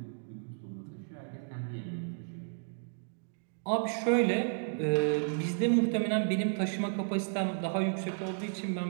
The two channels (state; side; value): silent; left; digital silence